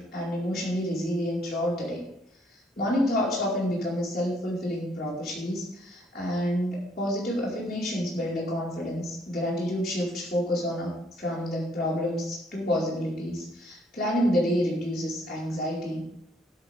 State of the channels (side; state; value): both; normal; correlation 0.67